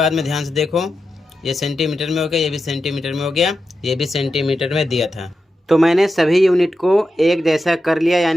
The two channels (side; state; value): both; normal; correlation 0.89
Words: में ध्यान से देखो, ये सेंटीमीटर में हो गया, ये भी सेंटीमीटर में हो गया, ये भी सेंटीमीटर में दिया था। तो मैंने सभी यूनिट को एक जैसा कर लिया,